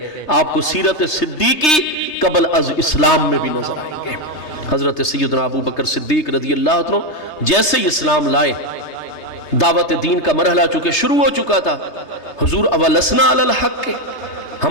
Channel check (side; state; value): right; late; 3.3 ms